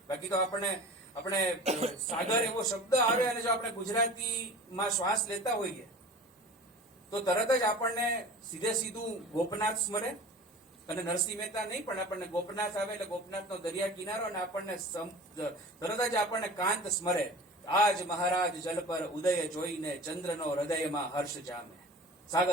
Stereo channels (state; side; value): normal; both; correlation 0.39